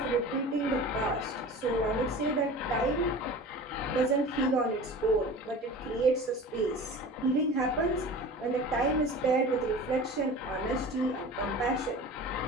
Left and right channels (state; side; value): normal; both; correlation 0.37